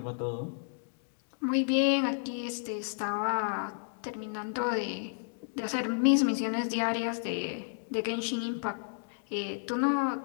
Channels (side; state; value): right; silent; digital silence